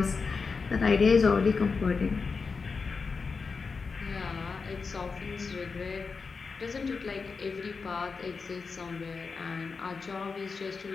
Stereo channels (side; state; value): right; quieter; 4.8 dB